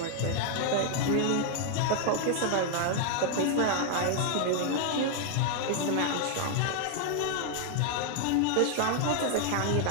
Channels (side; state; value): both; different; correlation 0.00